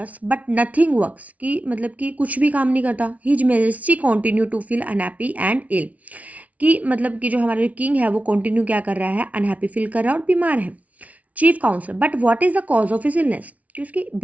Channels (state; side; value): late; left; 0.069 ms